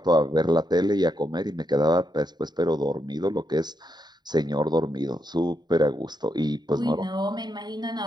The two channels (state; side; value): late; left; 0.20 ms